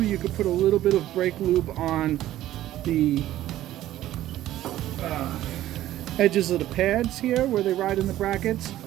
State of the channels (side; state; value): left; quieter; 13.8 dB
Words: could put a little bit of brake lube on the edges of the pads here where they ride in the brackets.